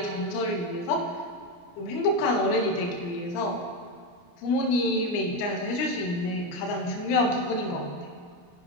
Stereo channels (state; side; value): late; right; 29 ms